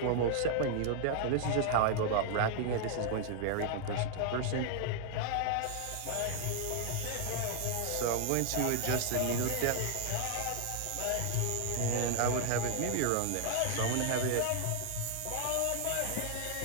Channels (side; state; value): both; different; correlation 0.00